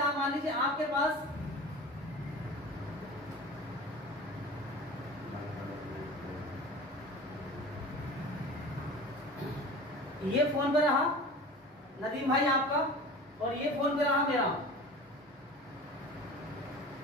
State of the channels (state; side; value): normal; both; correlation 0.37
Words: मान लीजिए आपके पास ये फोन पे रहा नदीम भाई आपका, और ये फोन पे रहा मेरा।